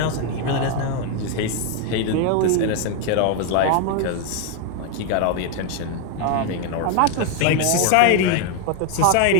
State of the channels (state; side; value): different; both; correlation 0.01